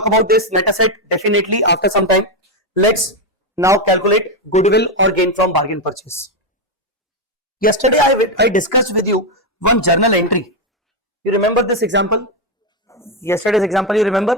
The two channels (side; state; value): both; normal; correlation 0.05